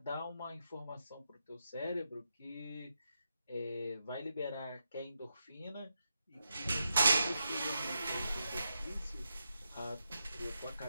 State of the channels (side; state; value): both; inverted; correlation -0.85